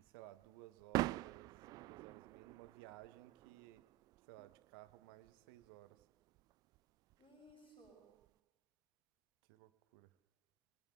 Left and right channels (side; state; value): left; quieter; 17.2 dB